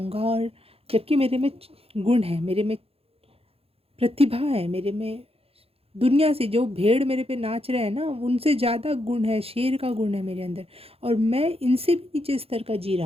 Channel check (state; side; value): late; left; 0.28 ms